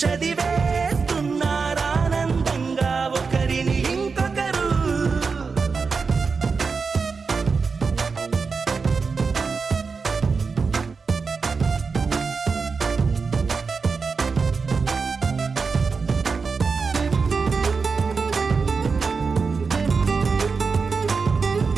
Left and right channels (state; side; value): quieter; left; 4.9 dB